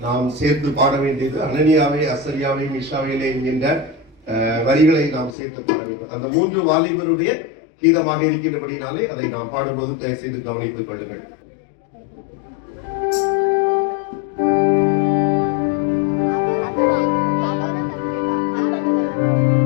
நாம் சேர்த்து பாட வேண்டியது. அனனியாவே அசரியாவே மிஷாவேலே என்கின்ற வரிகளை நாம் சேர்த்து பாட வேண்டும். அந்த 3 வாலிபருடைய கீதமாக இருக்கின்றபடினாலே அதை நாம் பாடும்போது தயவு செய்து கவனித்துக் கொள்ளுங்கள்.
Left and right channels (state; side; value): drops out; right; at 5.4 s